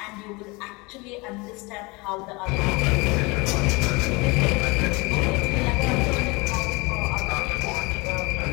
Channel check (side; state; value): right; quieter; 25.9 dB